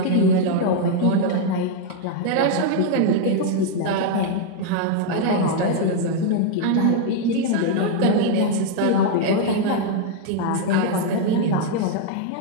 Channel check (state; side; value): different; both; correlation 0.00